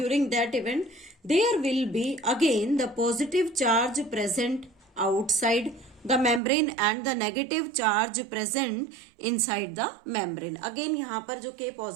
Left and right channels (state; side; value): drops out; left; at 6.4 s